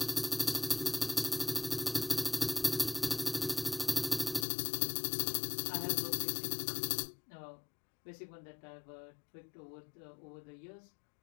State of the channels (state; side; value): drops out; right; at 4.5 s